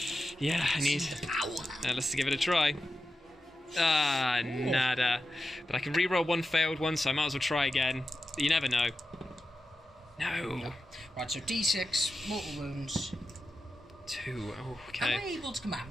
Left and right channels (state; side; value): normal; both; correlation 0.90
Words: Yeah, I need... The power. Let's give it a try. Ah, nada. But I can reroll one failed one, so I might as well try again. You never know. No. Right, so D6, mortal wounds. 2. Oh, Am I okay. able to